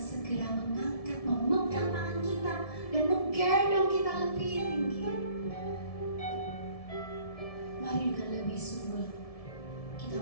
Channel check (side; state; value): right; late; 1.7 ms